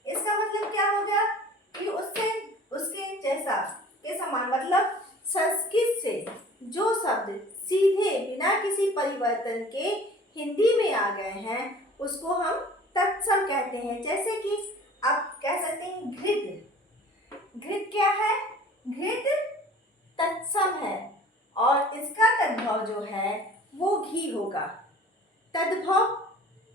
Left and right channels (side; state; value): both; normal; correlation 0.46